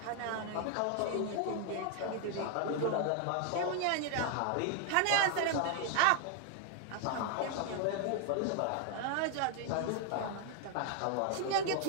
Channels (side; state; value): both; different; correlation 0.00